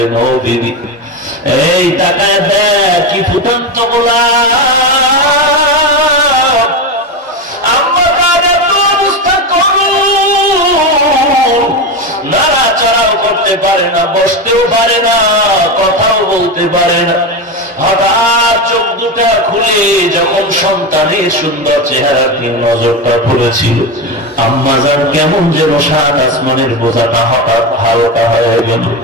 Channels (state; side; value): normal; both; correlation 0.16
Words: ও বিবি, এই তাকায় দেখ কি ফুটন্ত গোলাপ। আম্মা জান এত অবস্থা করুন, চলতে পারে না, বসতেও পারে না, কথাও বলতে পারে না। হঠাৎ চোখ দুটা খুলে যখন সন্তানের সুন্দর চেহারার দিকে নজরটা পড়েছিল, আম্মাজান কেমন যেন সাত আসমানের বোঝাটা হঠাৎ হালকা হয়ে গেল।